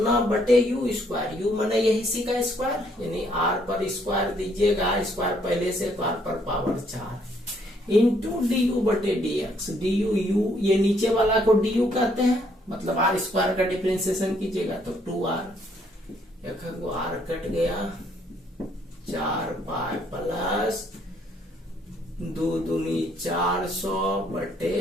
बटे u²। u माने यही इसी का स्क्वायर, यानी r पर स्क्वायर दीजिएगा, स्क्वायर पहले से तो r पर power 4 into du/dx। du u ये नीचे वाला को du कहते हैं, मतलब r² का डिफरेंशिएशन कीजिएगा तो 2r, एक को r कट गया, 4 पाई प्लस 2 दूनी 400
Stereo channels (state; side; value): normal; both; correlation 0.68